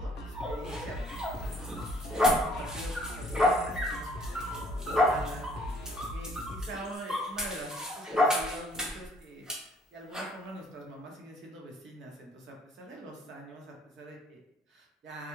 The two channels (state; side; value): normal; both; correlation 0.60